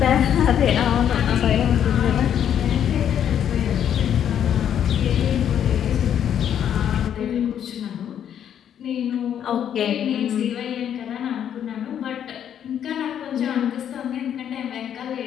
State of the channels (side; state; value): right; quieter; 9.4 dB